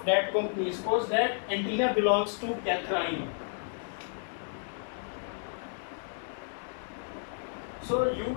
that company. Suppose that antenna belongs to Catherine. So you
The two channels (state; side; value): silent; right; digital silence